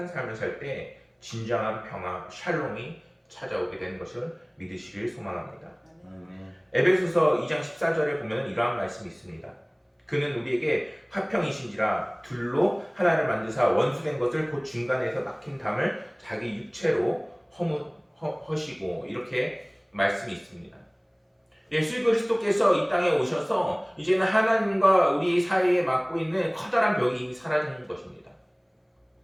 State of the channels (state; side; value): identical; both; correlation 1.00